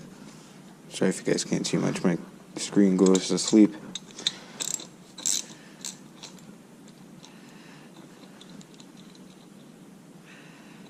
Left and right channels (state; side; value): identical; both; correlation 1.00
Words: Sorry if you guys can't see much, my screen goes to sleep.